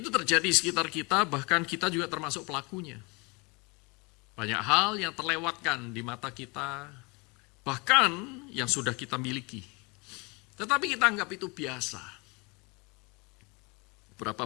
terjadi di sekitar kita, bahkan kita juga termasuk pelakunya. Banyak hal yang terlewatkan di mata kita, bahkan yang sudah kita miliki. Tetapi kita anggap itu biasa.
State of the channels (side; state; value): right; quieter; 28.4 dB